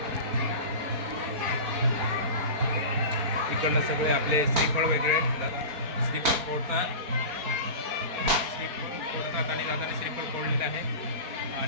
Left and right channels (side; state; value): left; late; 4.4 ms